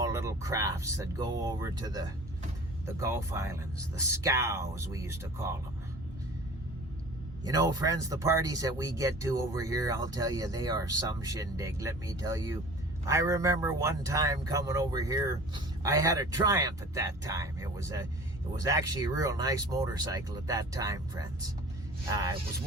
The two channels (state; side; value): normal; both; correlation 0.42